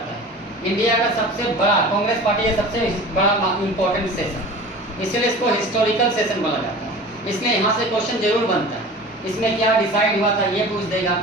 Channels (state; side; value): normal; both; correlation 0.38